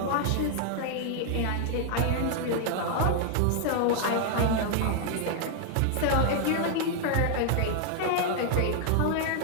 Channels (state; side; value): different; both; correlation 0.00